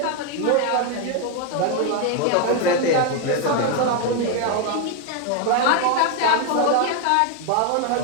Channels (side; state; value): both; different; correlation 0.01